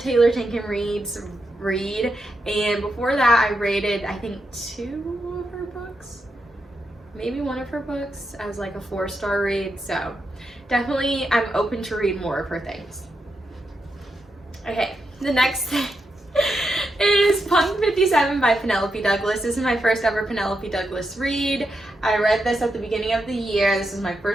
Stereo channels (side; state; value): both; normal; correlation 0.85